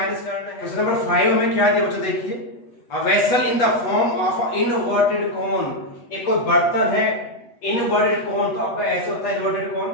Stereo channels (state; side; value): late; right; 8.2 ms